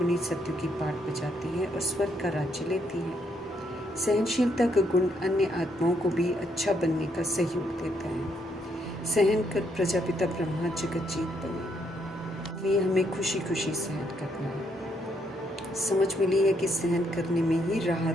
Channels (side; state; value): both; normal; correlation 0.74